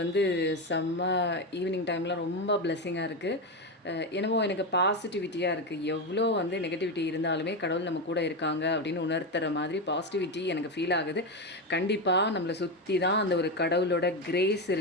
வந்து செம்ம ஈவினிங் டைமில் ரொம்ப பிளெஸ்ஸிங்காக இருக்குது. என்னமோ எனக்கு பாசிட்டிவிட்டியாக இருக்குது. எவ்வளோ வந்து நெகட்டிவிட்டி இருந்தாலுமே கடவுள் நம்ம கூட இருக்காங்க அப்படின்னு உணர்த்துற மாதிரி பாசிட்டிவிட்டி எனக்கு ஃபீல் ஆகுது. கண்டிப்பாக நம்மளை சுற்றி தான் அந்த ஒரு கடவுளோட கிரேஸ்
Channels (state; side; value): normal; both; correlation 0.13